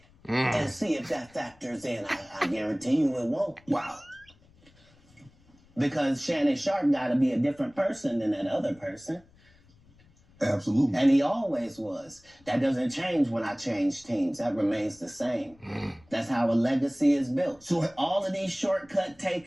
and see if that factors in. I guarantee you it won't. Wow. Because Shannon Sharp got to be a different person than that other person. Absolutely. And he always was. That doesn't change when I change teams. That remains the same. That's how a legacy is built. So all of these shortcut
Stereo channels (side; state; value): left; noise; rumble, 29 dB below the sound